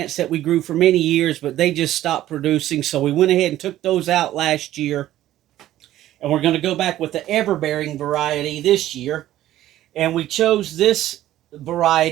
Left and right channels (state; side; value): quieter; left; 13.8 dB